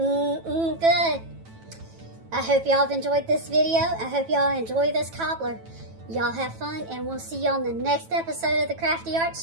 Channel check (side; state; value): left; late; 9.1 ms